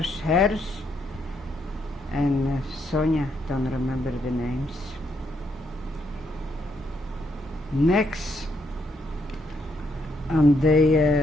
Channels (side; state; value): both; normal; correlation 0.75